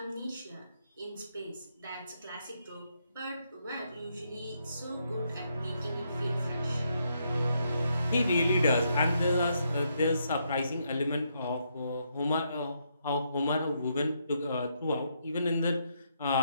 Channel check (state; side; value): inverted; both; correlation -0.77